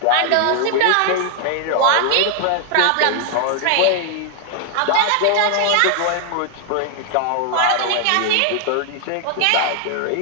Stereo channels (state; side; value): different; both; correlation 0.00